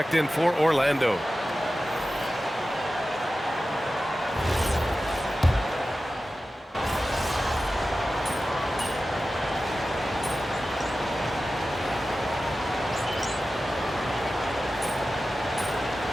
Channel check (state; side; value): normal; both; correlation 0.94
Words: in for Orlando.